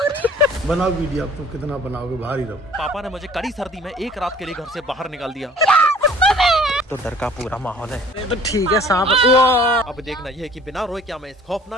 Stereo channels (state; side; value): normal; both; correlation 0.51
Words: बनाओ वीडियो, अब तुम कितना बनाओगे, बाहर ही रहो। पापा ने मुझे कड़ी सर्दी में एक रात के लिए घर से बाहर निकाल दिया। तो डर का पूरा माहौल है। तो ठीक है सांप। अब देखना यह है कि बिना रोए क्या मैं इस